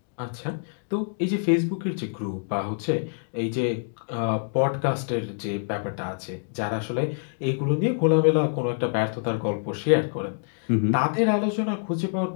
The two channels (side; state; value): right; silent; digital silence